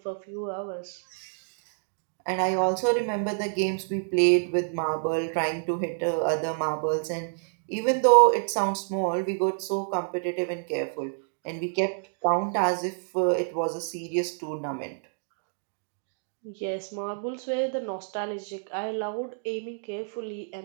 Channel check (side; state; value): left; silent; digital silence